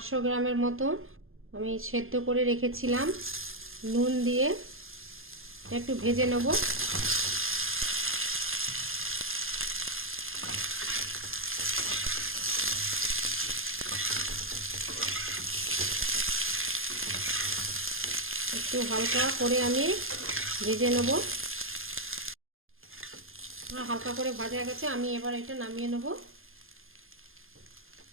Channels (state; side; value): late; left; 0.60 ms